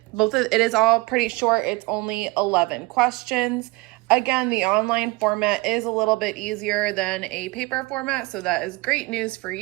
is all pretty short. It's only 11 questions. Again, the online format is a little bit easier than a paper format, so that is great news for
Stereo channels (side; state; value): left; quieter; 23.7 dB